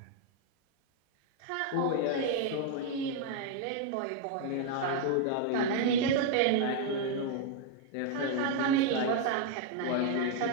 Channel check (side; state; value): both; different; correlation 0.00